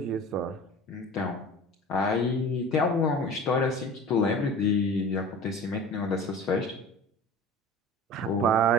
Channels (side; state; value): both; normal; correlation 0.38